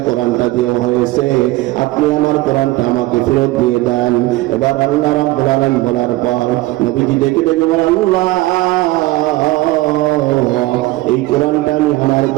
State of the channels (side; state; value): left; quieter; 18.8 dB